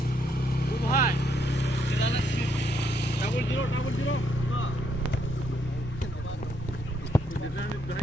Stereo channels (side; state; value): both; normal; correlation 0.74